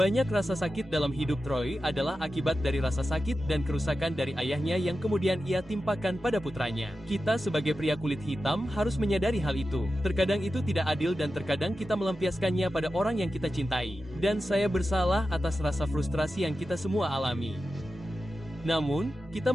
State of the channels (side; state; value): both; normal; correlation 0.92